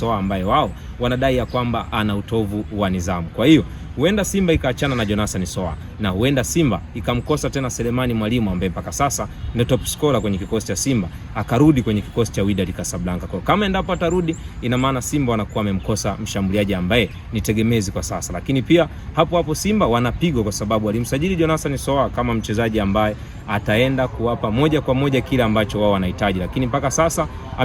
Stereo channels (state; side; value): identical; both; correlation 1.00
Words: ambaye wao wanadai ya kwamba ana utovu wa nidhamu. Kwa hiyo huenda Simba ikaachana na Jonathan Soa na huenda Simba ikamkosa tena Selemani Mwalimu ambaye mpaka sasa ni top scorer kwenye kikosi cha Simba, akarudi kwenye kikosi cha Wydad Casablanca. Kwa kama endapo atarudi, ina maana Simba wanakuwa wamemkosa mshambuliaji ambaye ni tegemezi kwa sasa. Lakini pia hapo Simba wanapigwa kwa sababu walimsajili Jonathan Soa kama mchezaji ambaye ataenda kuwapa moja kwa moja kile ambacho wao wanahitaji, lakini mpaka sasa